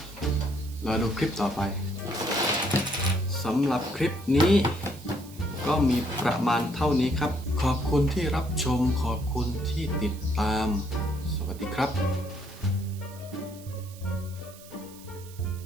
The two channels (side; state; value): right; noise; hiss, 20 dB below the sound